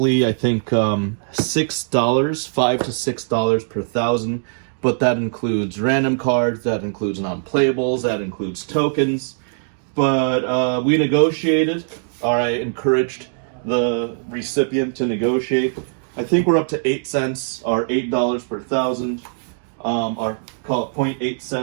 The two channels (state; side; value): silent; left; digital silence